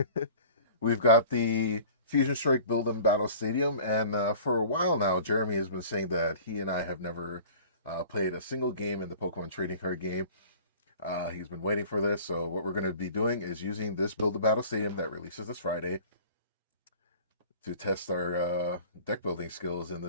we've got the Fusion Strike Build and Battle Stadium, and for a while now, Jeremy has been saying that he and I have never played a single game in the Pokemon trading card game. He's been waiting for this, so what we're going to be doing is using this Build and Battle Stadium that releases this Friday to test our deck building skills in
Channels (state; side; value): inverted; both; correlation -0.44